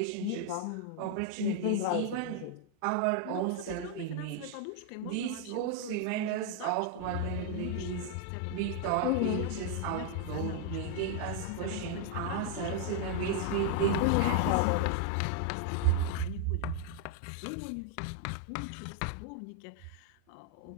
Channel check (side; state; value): both; different; correlation 0.00